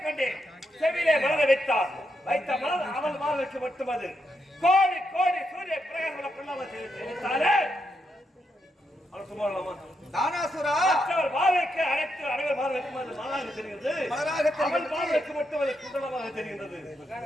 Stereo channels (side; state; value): both; normal; correlation 0.82